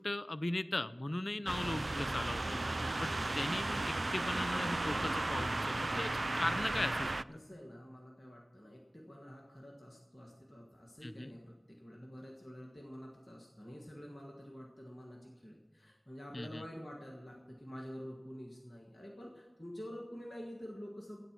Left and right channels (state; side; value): normal; both; correlation 0.97